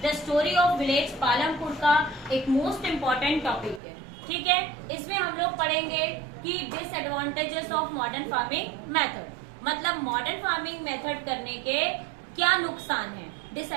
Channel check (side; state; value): left; drops out; at 3.8 s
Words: the story of village Palampur का एक मोस्ट इम्पॉर्टेंट टॉपिक है। ठीक है, इसमें हम लोग पढ़ेंगे कि disadvantages of modern farming method, मतलब मॉडर्न फार्मिंग मेथड करने के क्या नुकसान है।